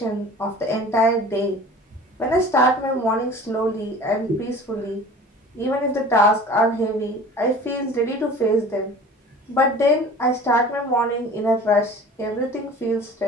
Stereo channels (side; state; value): both; normal; correlation 0.42